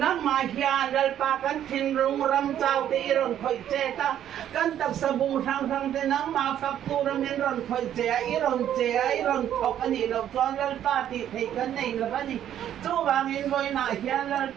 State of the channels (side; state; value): left; quieter; 10.7 dB